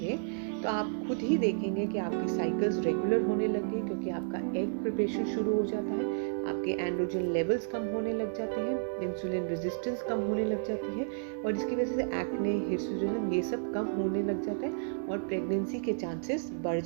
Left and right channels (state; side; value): silent; left; digital silence